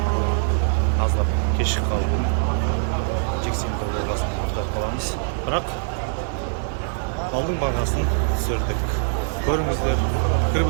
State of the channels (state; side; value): silent; left; digital silence